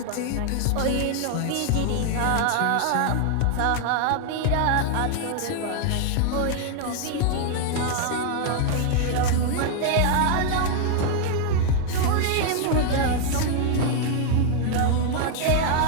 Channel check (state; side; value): different; both; correlation 0.00